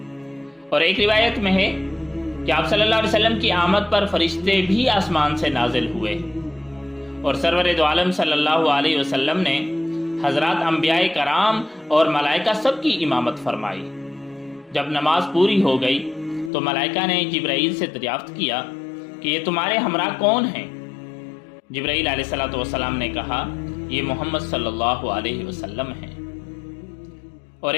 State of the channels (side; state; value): right; drops out; at 16.5 s